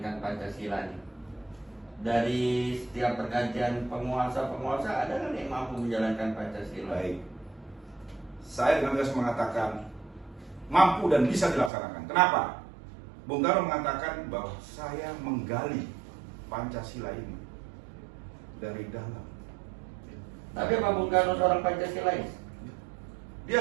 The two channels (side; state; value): left; drops out; at 11.7 s